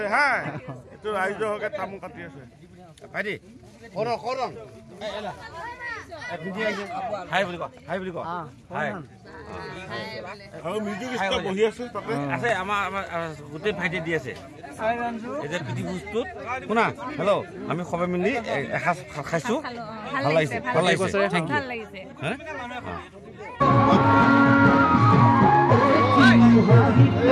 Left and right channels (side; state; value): both; identical; correlation 1.00